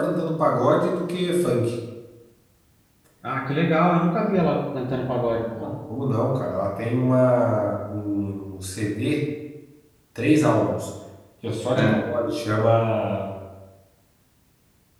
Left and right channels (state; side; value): identical; both; correlation 1.00